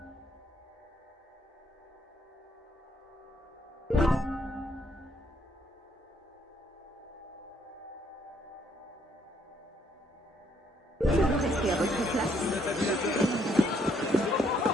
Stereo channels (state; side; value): normal; both; correlation 0.69